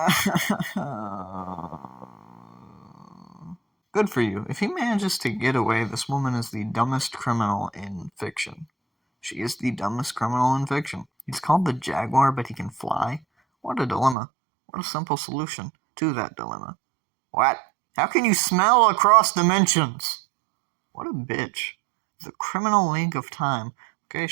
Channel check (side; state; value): left; drops out; at 14.2 s